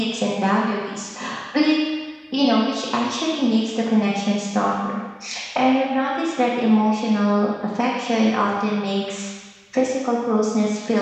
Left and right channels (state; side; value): identical; both; correlation 1.00